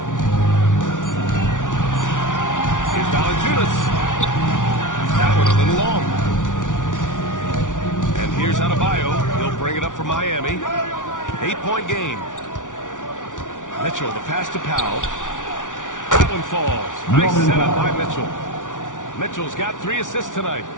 Here's Valanciunas. That one a little long. And here's Adebayo. He'll bring it up for Miami. 8-point game. Mitchell, the pass to Powell. That one falls. Nice setup by Mitchell. Mitchell's got 3 assists tonight.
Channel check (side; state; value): right; late; 0.87 ms